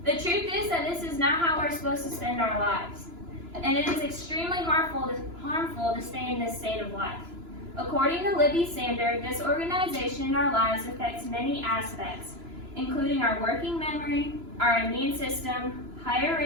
The truth is that this is not how we're supposed to spend our lives, and it is extremely harmful to stay in this state of life. According to Libby Sander, disorganization in our lives affects many aspects, including our working memory, our immune system, higher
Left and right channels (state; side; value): late; left; 3.0 ms